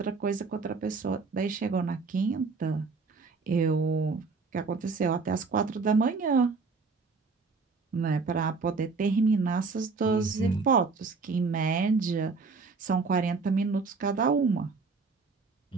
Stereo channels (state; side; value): quieter; left; 4.5 dB